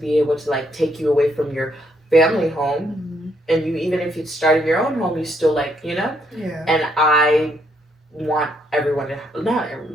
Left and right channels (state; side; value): normal; both; correlation 0.73